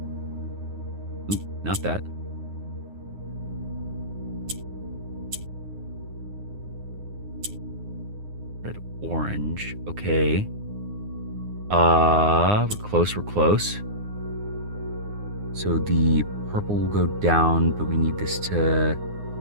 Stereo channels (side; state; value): left; late; 9.7 ms